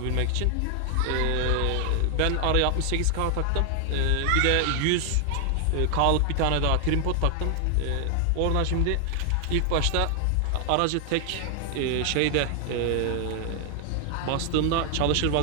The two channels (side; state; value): both; different; correlation 0.00